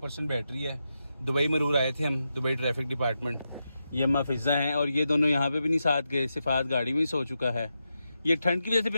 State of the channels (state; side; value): inverted; both; correlation -0.87